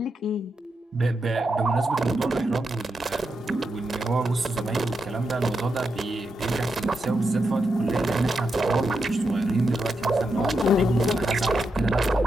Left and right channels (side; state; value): both; normal; correlation 0.85